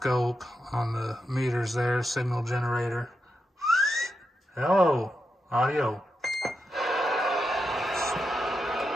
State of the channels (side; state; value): both; normal; correlation 0.86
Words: on the meters there, signal generator. Hello, audio.